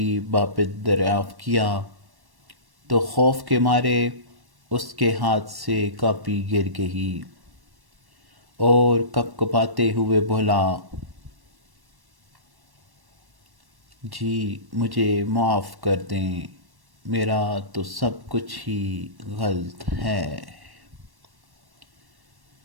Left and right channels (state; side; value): late; left; 1.1 ms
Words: بابت دریافت کیا تو خوف کے مارے اس کے ہاتھ سے کاپی گر گئی اور کپکپاتے ہوئے بولا، جی مجھے معاف کر دیں، میرا تو سب کچھ ہی غلط ہے۔